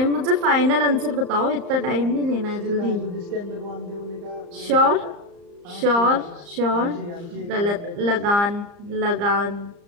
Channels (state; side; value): late; left; 34 ms